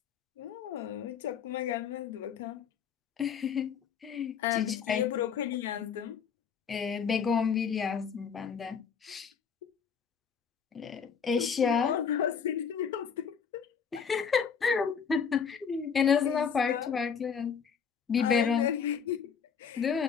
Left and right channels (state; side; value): quieter; right; 6.7 dB